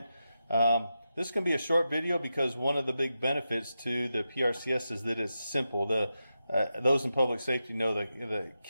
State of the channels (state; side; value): inverted; both; correlation -0.89